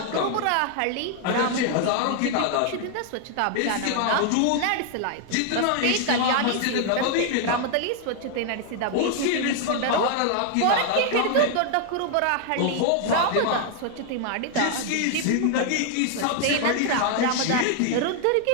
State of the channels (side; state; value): both; different; correlation 0.00